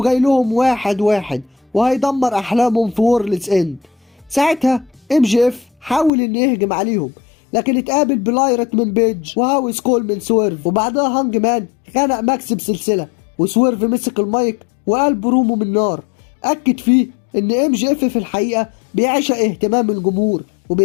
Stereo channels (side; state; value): right; drops out; at 6.1 s